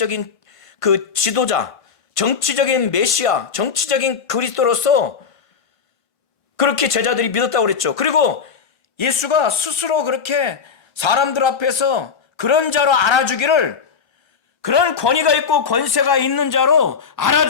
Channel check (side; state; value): right; quieter; 6.1 dB